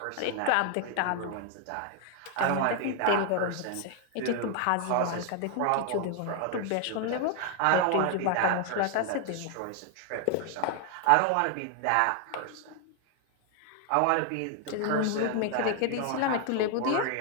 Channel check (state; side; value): different; both; correlation 0.00